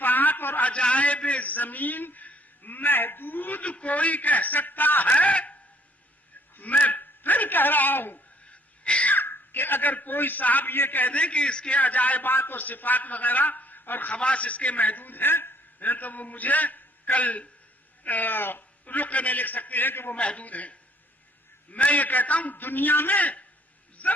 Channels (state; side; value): normal; both; correlation 0.62